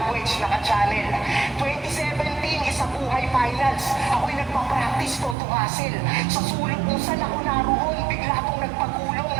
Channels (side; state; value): left; drops out; at 5.4 s